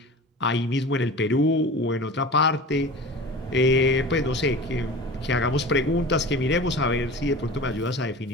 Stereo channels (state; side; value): normal; both; correlation 0.35